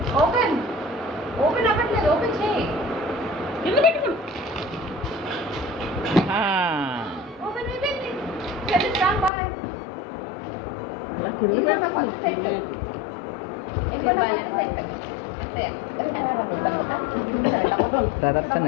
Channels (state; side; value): drops out; right; at 9.3 s